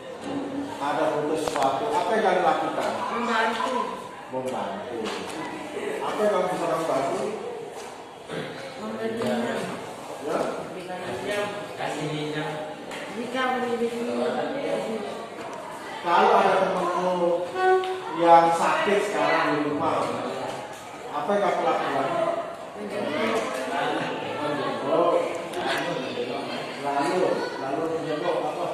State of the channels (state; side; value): identical; both; correlation 1.00